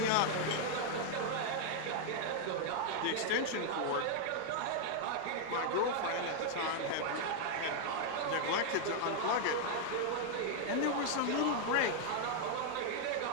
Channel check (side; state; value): both; different; correlation 0.00